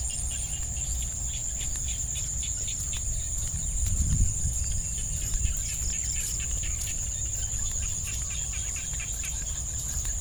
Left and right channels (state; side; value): identical; both; correlation 1.00